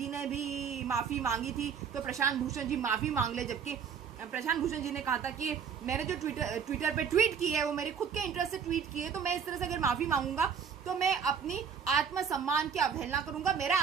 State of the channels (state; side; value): quieter; left; 7.0 dB